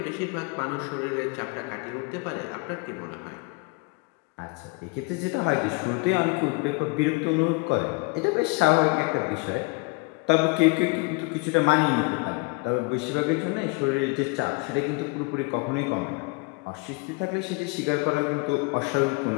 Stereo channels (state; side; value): quieter; right; 28.7 dB